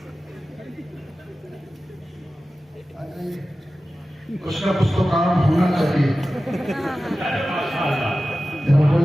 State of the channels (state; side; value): normal; both; correlation 0.95